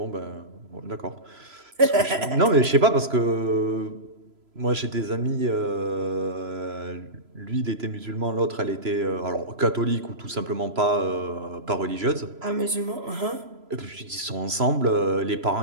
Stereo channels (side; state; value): left; late; 3.0 ms